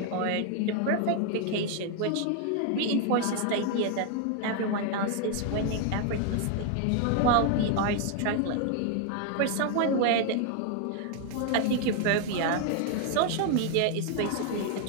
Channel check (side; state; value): both; different; correlation 0.00